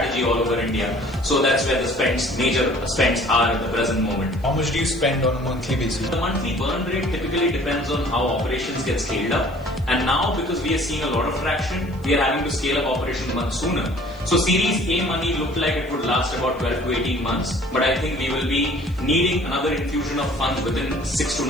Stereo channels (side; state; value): left; noise; hiss, 29 dB below the sound